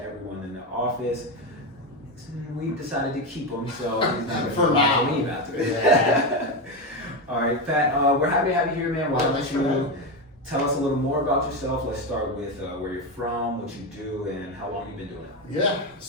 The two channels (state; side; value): normal; both; correlation 0.13